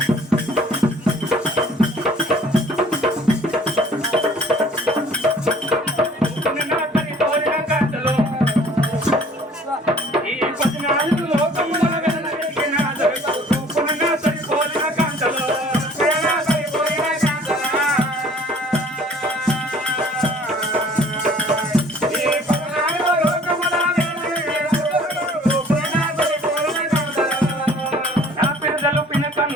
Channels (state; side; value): normal; both; correlation 0.53